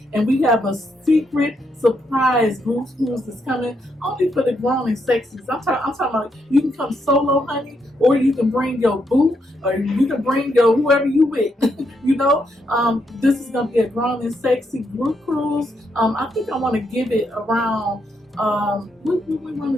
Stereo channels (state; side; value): normal; both; correlation 0.79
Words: and we have a secret surprise group cruise that's coming only for the grown and sexies. I'm talking about you can come solo, honey, or you can bring your boo, or you can bring your whoever you with. This is gonna be a grown and sexy group cruise. I think I want to give it around. We